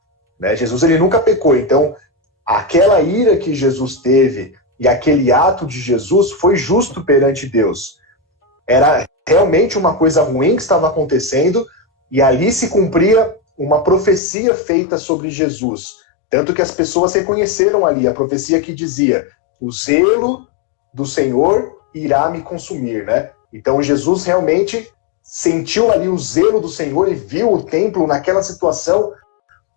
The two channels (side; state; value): right; drops out; at 14.2 s